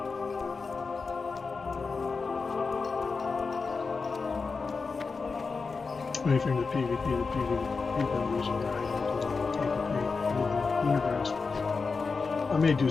Anything the PvP, the PvP vendors are PvP, universe. I may do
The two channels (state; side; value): quieter; right; 4.6 dB